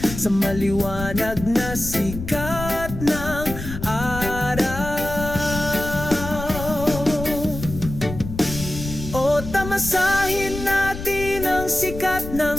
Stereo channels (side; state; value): left; noise; rumble, 9 dB below the sound